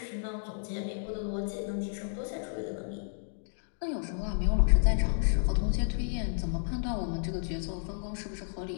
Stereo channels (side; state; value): right; silent; digital silence